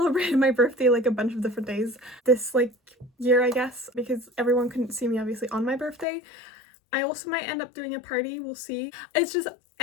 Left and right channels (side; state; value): right; drops out; at 6.1 s